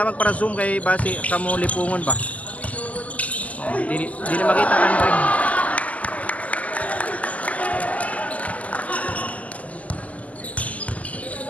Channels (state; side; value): late; right; 0.073 ms